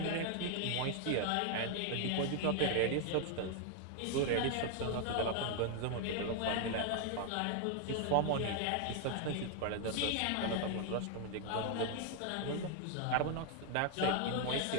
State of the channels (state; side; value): different; both; correlation 0.00